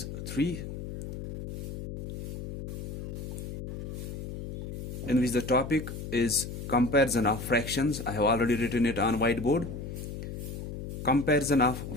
3, in which the topic is comparison of fractions. I have already written it on whiteboard. Comparison of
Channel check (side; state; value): left; noise; hum, 8 dB below the sound